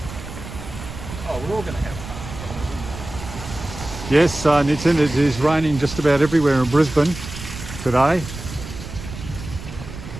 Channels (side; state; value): right; noise; rumble, 11 dB below the sound